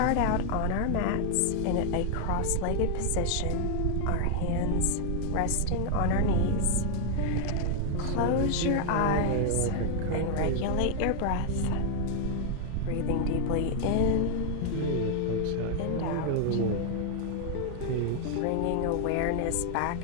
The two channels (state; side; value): different; both; correlation 0.00